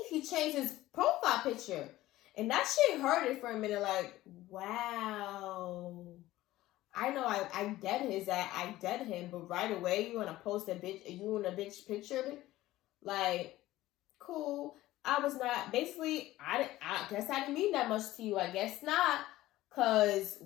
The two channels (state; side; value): quieter; right; 16.2 dB